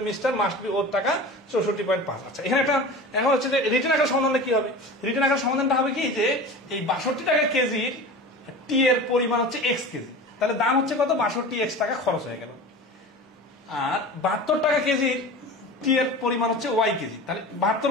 mixture must be worth টাকা 64.5। আচ্ছা, এখানে একটা এখন হচ্ছে যে রিটার্ন আকার সমাধানটা কি হবে? রিটার্ন আকার সমাধানটা হবে কি যে এই 62 টাকা কেজির টি এর পরিমাণ হচ্ছে এক্স কেজি, তাহলে দাম হচ্ছে কত 62x টাকা খরচ হয়ে গেল। আর 72 টাকা কেজির টি এর পরিমাণ হচ্ছে ওয়াই কেজি, তাহলে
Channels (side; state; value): both; normal; correlation 0.34